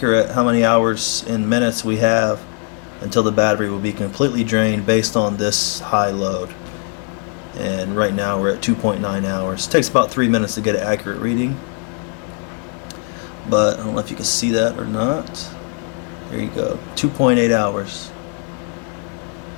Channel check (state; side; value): quieter; right; 32.5 dB